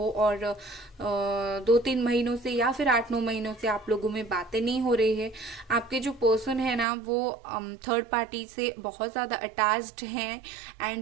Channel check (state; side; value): drops out; left; at 6.9 s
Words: और 2-3 महीनों से या फिर 8-9 महीनों से आप लोगों में बातें नहीं हो रही है। आपके जो पर्सन है ना, वो थर्ड पार्टी से बहुत ज्यादा अटैच्ड हैं।